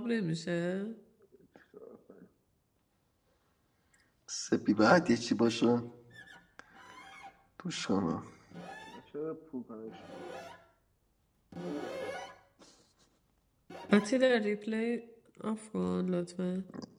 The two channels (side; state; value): both; identical; correlation 1.00